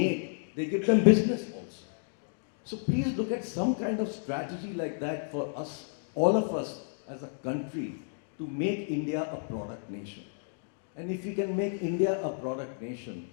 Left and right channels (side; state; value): right; silent; digital silence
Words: they give them business also. So please look at some kind of strategy like that for us, all of us as a country, to make India a product nation. And if we can make India a product nation,